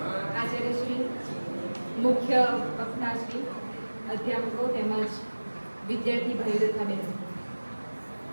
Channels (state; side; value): inverted; both; correlation -1.00